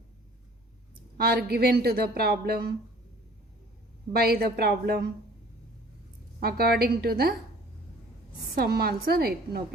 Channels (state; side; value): normal; both; correlation 0.51